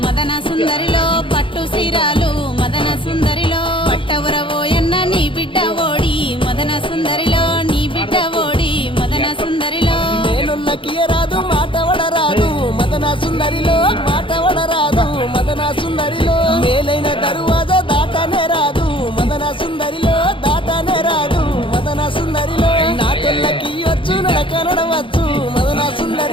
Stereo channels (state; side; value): late; right; 0.25 ms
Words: మదన సుందరిలో పట్టు సీరాలు మదన సుందరిలో పట్టవురబోయన్న నీ బిడ్డ ఓడి మదన సుందరిలో నీ బిడ్డ ఓడి మదన సుందరిలో రాదు మాట వడరాదు మదన సుందరిలో మాట వడరాదు మదన సుందరిలో మేలైన దరువాజ దాటనే రాదు మదన సుందరిలో దాటనే రాదు మదన సుందరిలో నా తెల్లకి వచ్చు నడక నడవచ్చు మదన